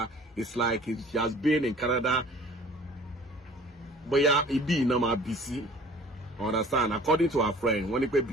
it's like she has been in Canada. Bóyá ibi iná máa bí sí. Understand? According to our friend, wọ́n ní pé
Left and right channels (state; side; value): normal; both; correlation 0.49